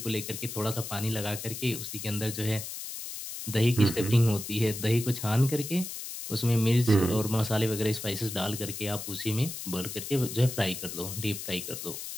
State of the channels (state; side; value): noise; left; hiss, 8 dB below the sound